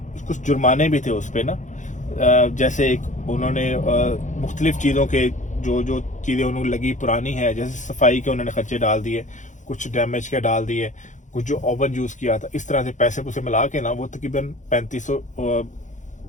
कुछ जुर्माने भी थे उस पर ना। जैसे एक उन्होंने मुख्तलिफ चीज़ों के जो जो चीज़ें उन्होंने लगी पुरानी है, जैसे सफाई के उन्होंने खर्चे डाल दिए, कुछ डैमेज के डाल दिए, कुछ जो ओवन यूज़ किया था, इस तरह से पैसे पुसे मिला के ना वो तकरीबन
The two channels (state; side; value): late; right; 0.36 ms